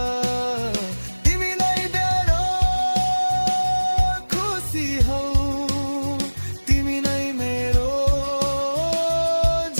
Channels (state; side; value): inverted; both; correlation -1.00